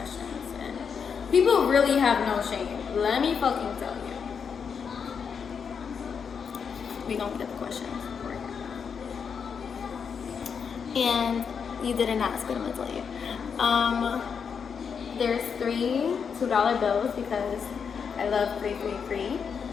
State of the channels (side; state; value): right; quieter; 6.5 dB